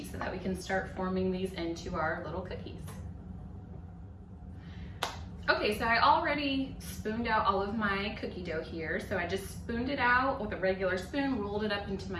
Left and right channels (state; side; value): identical; both; correlation 1.00